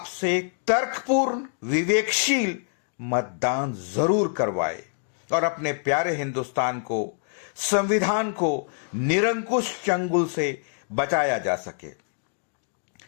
तर्कपूर्ण, विवेकशील मतदान जरूर करवाए और अपने प्यारे हिंदुस्तान को, संविधान को निरंकुश चंगुल से बचाया जा सके।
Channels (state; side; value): silent; right; digital silence